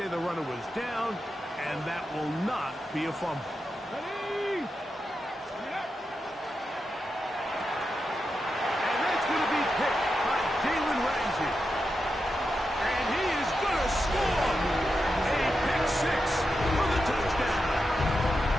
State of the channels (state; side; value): normal; both; correlation 0.88